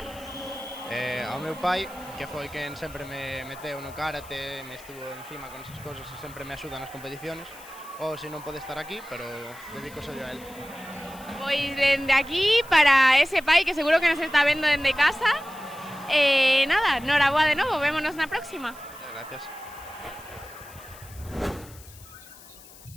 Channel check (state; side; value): noise; left; hiss, 20 dB below the sound